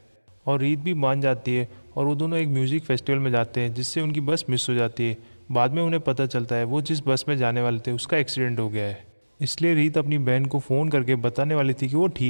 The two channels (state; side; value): inverted; both; correlation -1.00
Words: और रीत भी मान जाती है और वो दोनों एक म्यूजिक फेस्टिवल में जाते हैं, जिससे उनकी बस मिस हो जाती है। बाद में उन्हें पता चलता है वो जिस बस में जाने वाले थे उसका एक्सीडेंट हो गया है। इसलिए रीत अपनी बहन को फ़ोन करके बताने वाली थी कि वो